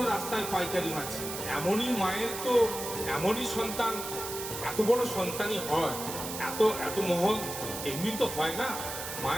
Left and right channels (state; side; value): noise; right; hiss, 7 dB below the sound